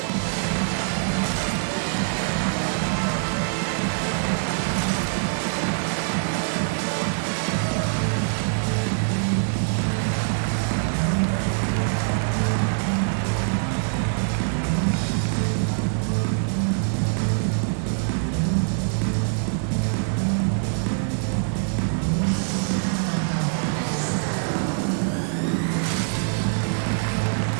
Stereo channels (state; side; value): silent; left; digital silence